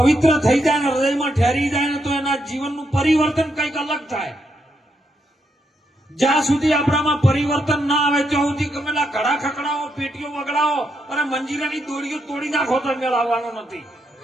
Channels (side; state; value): both; normal; correlation 0.80